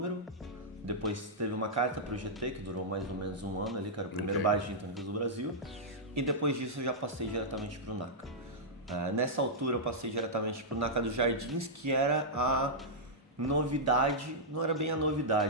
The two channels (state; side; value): normal; both; correlation -0.10